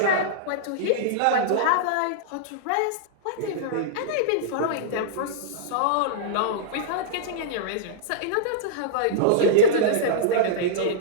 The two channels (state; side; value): different; both; correlation -0.03